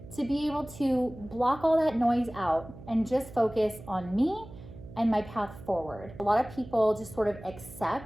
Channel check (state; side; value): noise; right; hum, 16 dB below the sound